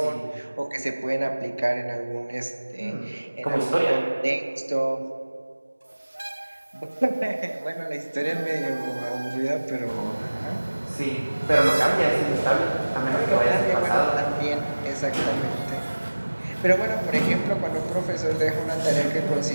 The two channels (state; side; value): inverted; both; correlation -1.00